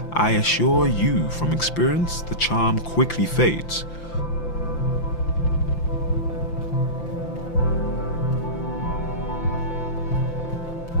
I assure you from experience, the charm quickly fades.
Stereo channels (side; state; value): right; late; 5.9 ms